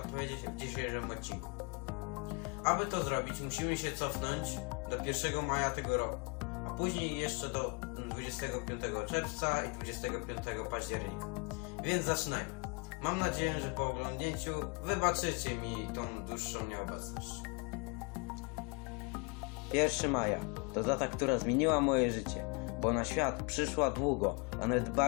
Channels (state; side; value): quieter; right; 32.7 dB